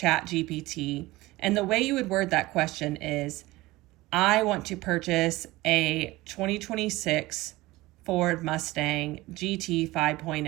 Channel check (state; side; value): quieter; left; 19.5 dB